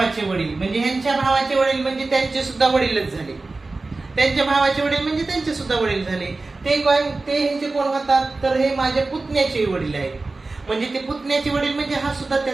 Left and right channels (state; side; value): quieter; left; 3.5 dB